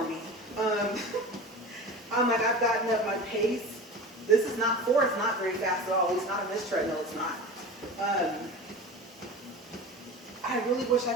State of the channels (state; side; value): normal; both; correlation 0.33